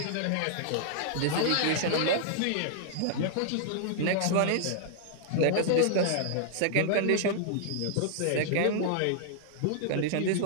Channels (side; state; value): both; different; correlation -0.01